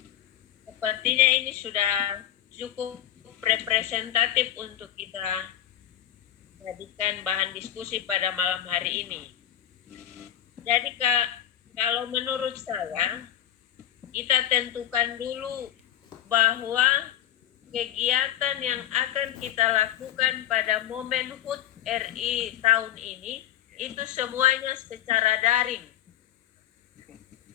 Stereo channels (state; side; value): quieter; right; 11.8 dB